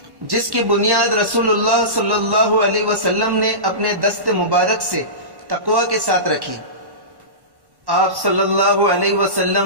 جس کی بنیاد رسول اللہ صلی اللہ علیہ وسلم نے اپنے دست مبارک سے تقوی کے ساتھ رکھی۔ آپ صلی اللہ علیہ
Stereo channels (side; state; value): left; late; 1.1 ms